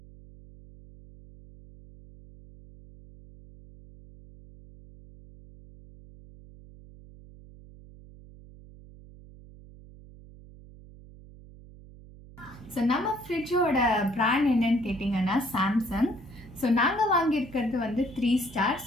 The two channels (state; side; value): noise; right; hum, 20 dB below the sound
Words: ஸோ நம்ம ஃப்ரிட்ஜோட பிராண்ட் என்னன்னு கேட்டிங்கன்னா சாம்சங். ஸோ நாங்கள் வாங்கியிருக்கிறது 3 ஸ்டார்.